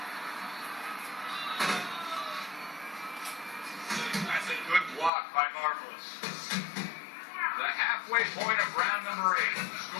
That's a good block by Marvelous. The halfway point of round number 8.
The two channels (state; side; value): drops out; right; at 5.1 s